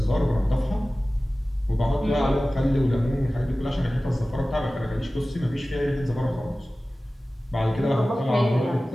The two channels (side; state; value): both; normal; correlation 0.97